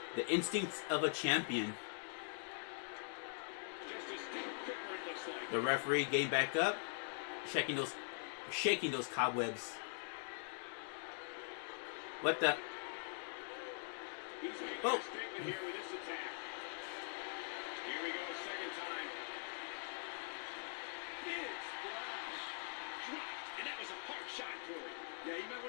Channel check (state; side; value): silent; right; digital silence